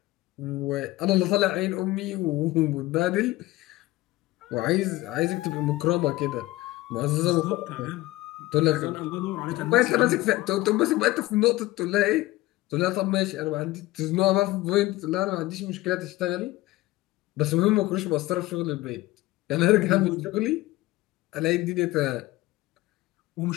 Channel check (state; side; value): quieter; right; 18.2 dB